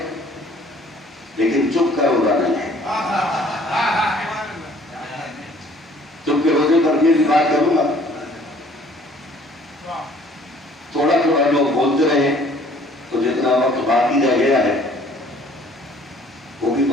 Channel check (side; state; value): both; normal; correlation 0.56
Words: لیکن چپ کا روزہ نہیں ہے. چپ کے روزے پر بھی بات کروں گا. تھوڑا تھوڑا لوگ بولتے رہے تو جتنا وقت باقی رہ گیا ہے وہ بھی